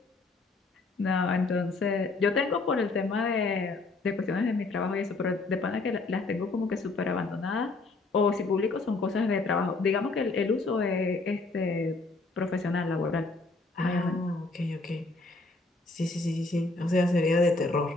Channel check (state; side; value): quieter; right; 3.5 dB